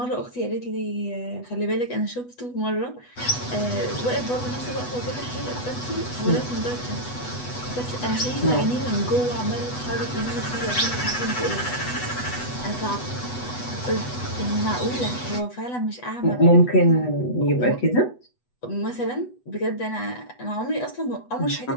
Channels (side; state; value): right; late; 8.1 ms